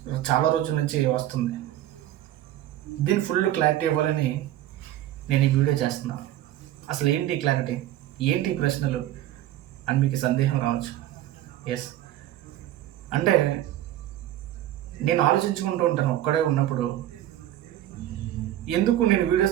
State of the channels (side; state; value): left; quieter; 13.2 dB